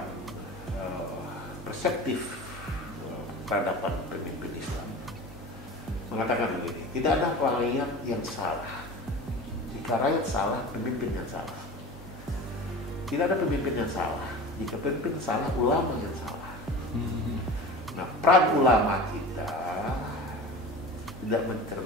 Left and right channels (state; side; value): normal; both; correlation 0.35